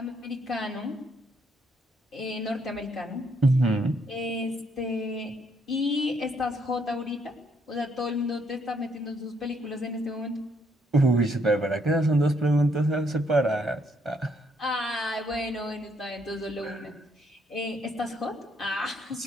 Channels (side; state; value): both; normal; correlation 0.71